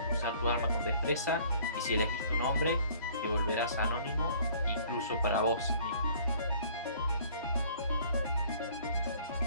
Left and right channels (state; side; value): inverted; both; correlation -0.54